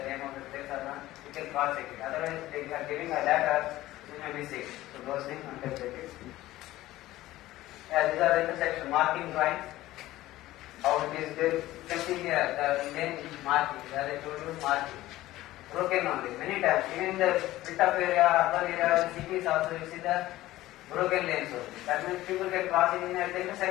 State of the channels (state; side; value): quieter; right; 16.2 dB